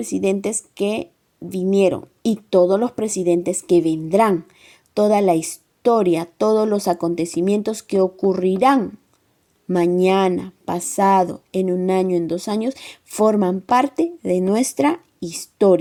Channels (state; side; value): identical; both; correlation 1.00